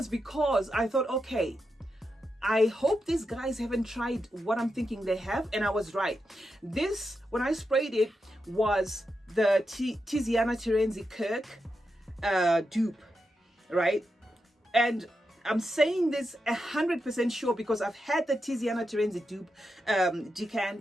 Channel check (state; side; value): normal; both; correlation 0.87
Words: because I thought, okay, I hope these guys haven't tried what I'm thinking they have. And I was right. This, when I sprayed it, was the Tiziana Terenzi Kirk dupe, right? And I'm saying this 100% sure because I've had the Tiziana Terenzi dupe